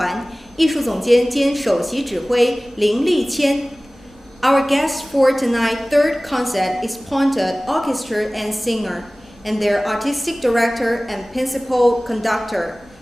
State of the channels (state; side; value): normal; both; correlation 0.98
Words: 艺术总监兼首席指挥林立谦。Our guest for tonight's third concert is Ponte Orchestra and Singer, and their artistic director and principal conductor,